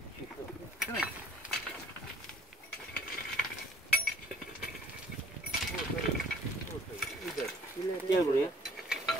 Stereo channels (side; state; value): both; normal; correlation 0.57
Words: çeşit. Gel buraya.